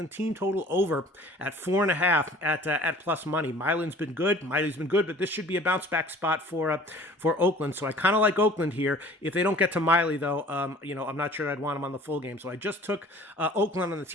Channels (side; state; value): both; normal; correlation 0.48